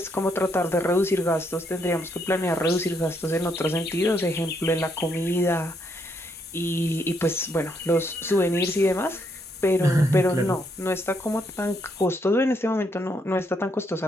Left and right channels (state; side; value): normal; both; correlation 0.75